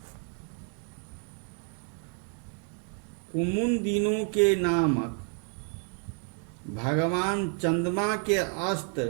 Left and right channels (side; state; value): left; quieter; 39.9 dB